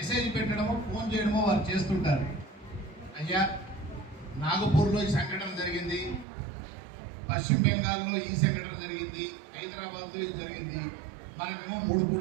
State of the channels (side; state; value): left; drops out; at 6.2 s